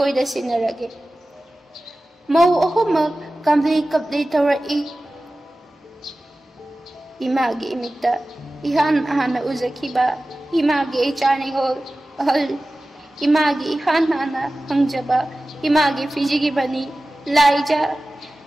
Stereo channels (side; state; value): both; normal; correlation 0.96